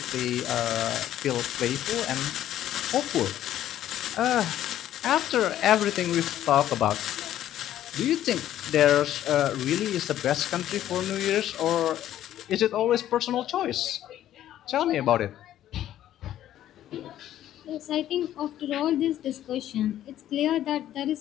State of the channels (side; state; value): right; quieter; 12.2 dB